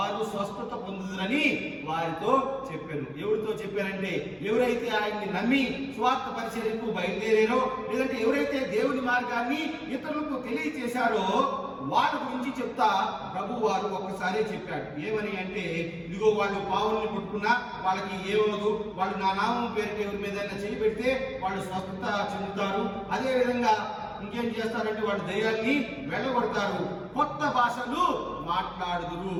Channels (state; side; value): identical; both; correlation 1.00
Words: స్వస్థత పొందుదురని వారితో చెప్పారు. ఎవరితో చెప్పారంటే, ఎవరైతే ఆయన్ని నమ్మి స్వార్థ పరిచర్యకు బయలుదేరారో, లేదంటే ఎవరైతే దేవుని మార్గాన్ని ఇతరులకు తెలియచేశారో వాళ్ళ గురించి చెప్తా ప్రభు వారు ఒక్కసారే చెప్పాడు. ఏమని అంటే, ఇదిగో వాళ్ళు పావుల్ని పట్టుకున్నా వాళ్ళకి ఏమవుదు, వాళ్ళు నా నామం పేరుకి ఎవరి మీద చేయి పెడితే వాళ్ళు స్వస్థత చెందుతారు. అదే విధంగా ఇంకేం చేస్తారంటే వాళ్ళు దయ్యాల్ని వెళ్ళగొడతారు, కొత్త భాషలు మాట్లాడుదురు.